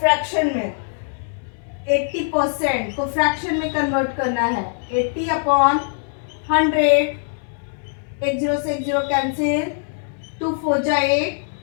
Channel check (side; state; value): right; silent; 64 dB below the other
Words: में। 80% को फ्रैक्शन में कन्वर्ट करना है, 80/100, 1 0 से 1 0 कैंसिल, 2 4 8,